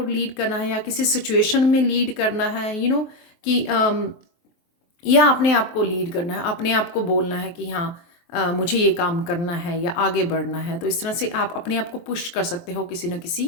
लीड करना है या किसी सिचुएशन में लीड करना है, कि या अपने आप को लीड करना है, अपने आप को बोलना है कि हाँ मुझे ये काम करना है या आगे बढ़ना है। तो इस तरह से आप अपने आप को पुश कर सकते हो किसी न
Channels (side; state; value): right; late; 23 ms